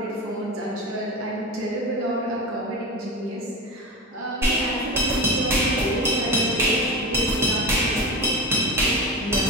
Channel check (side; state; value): both; normal; correlation 0.25